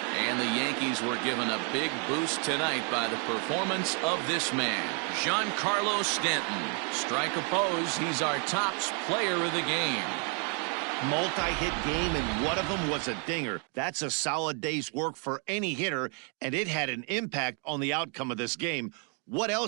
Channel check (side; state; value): left; quieter; 38.5 dB